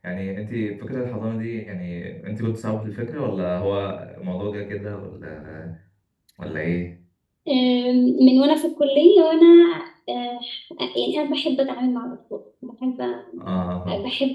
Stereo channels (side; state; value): both; identical; correlation 1.00